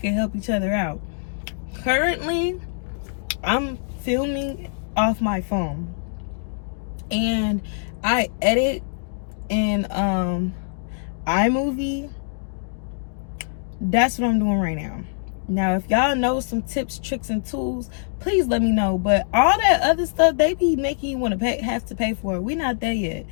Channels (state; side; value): silent; right; digital silence